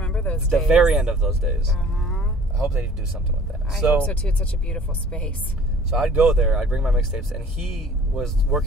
those days. The very end of those days. I hope they do something with that. I hope so, too. It's such a beautiful space. So I'd go there, I'd bring my mixtapes, and he was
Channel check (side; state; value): both; normal; correlation 0.50